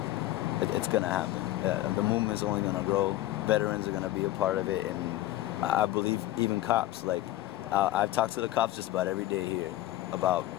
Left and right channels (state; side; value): quieter; right; 15.2 dB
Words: it's going to happen. The movement is only going to grow. Veterans are going to be a part of it, and I believe even cops. Like I've talked to the cops just about every day here about